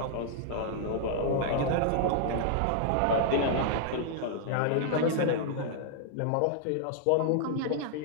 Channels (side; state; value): both; different; correlation -0.01